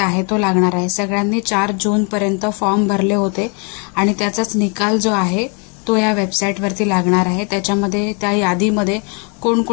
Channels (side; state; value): right; quieter; 35.3 dB